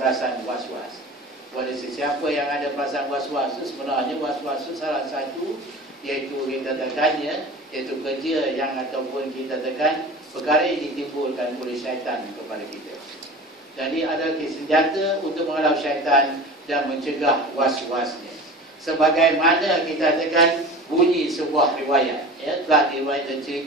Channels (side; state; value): both; normal; correlation 0.36